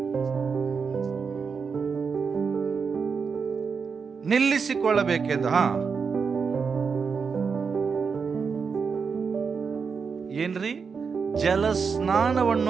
ನಿಲ್ಲಿಸಿಕೊಳ್ಳಬೇಕೆಂದು. ಏನ್ರಿ? ಜಲ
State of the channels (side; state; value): left; quieter; 5.6 dB